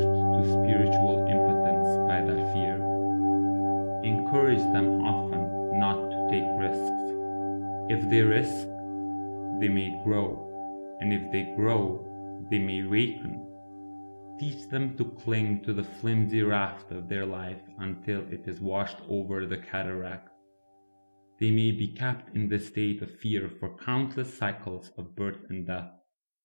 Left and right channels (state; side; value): inverted; both; correlation -1.00